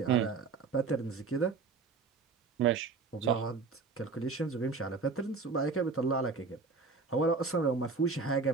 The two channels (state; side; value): quieter; left; 4.7 dB